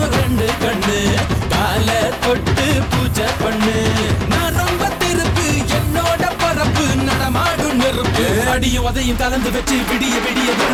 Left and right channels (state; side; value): identical; both; correlation 1.00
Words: ரெண்டு கண்ணு கால தொட்டு பூஜை பண்ணு நான் ரொம்ப திருப்பு என்னோட பரப்பு நடமாடும் நெருப்பு அடியும் உதையும் கலந்து வச்சு விடிய விடிய